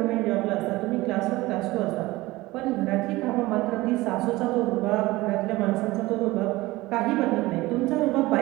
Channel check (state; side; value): quieter; left; 19.5 dB